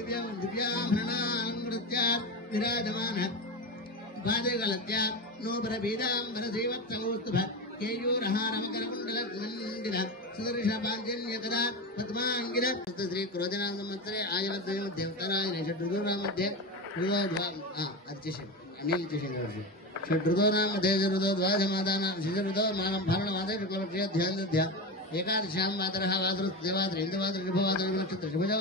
विराजमान पादगलत्य नोबर बीजाम्बर श्रीवत्सकौस्तुभ केयूरहारमकरकुण्डलमण्डिल सुदर्शपाञ्जन्यकदा पद्माङ्गिर श्री क्रोधनाम संवत्सरे आयुर्द्वय मध्ये उत्तरायणे षड्ऋतूनां मध्ये षड्ऋतूनां मध्ये ऋतोद्वाजमादानां शिशऋतो मानं फालनमादे शुक्लपक्षे ध्यानदध्या एकादशां मातरः वासुदेवात्र इन्द्रवात्र शुभवात्र नक्षत्र शुभजो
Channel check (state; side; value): normal; both; correlation 0.20